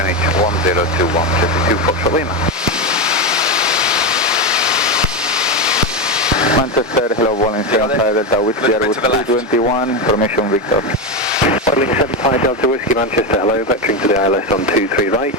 1021, Jersey 2 Foxtrot Lima. Manchester, hello, Warrington, 5 Delta Whiskey, Airwood 321, information Victor. Modeling 75 Delta Whiskey, Manchester, hello, vectoring to the ILS on 23 right,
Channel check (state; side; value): normal; both; correlation 0.13